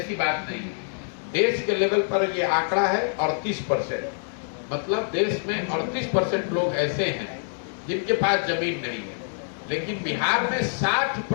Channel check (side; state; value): right; silent; digital silence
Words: बात नहीं है। देश के लेवल पर ये आंकड़ा है 38%, मतलब देश में 38% लोग ऐसे हैं जिनके पास जमीन नहीं है। लेकिन बिहार में